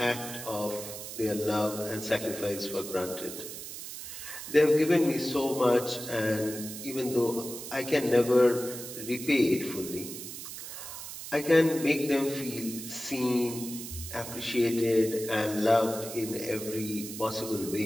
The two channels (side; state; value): right; noise; hiss, 10 dB below the sound